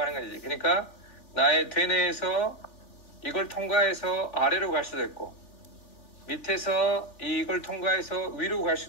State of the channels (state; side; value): late; right; 3.4 ms